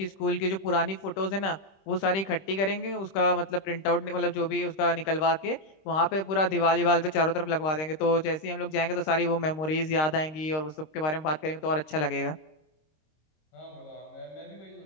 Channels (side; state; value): right; late; 26 ms